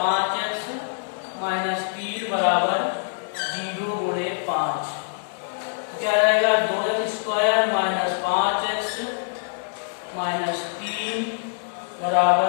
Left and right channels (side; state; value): right; silent; digital silence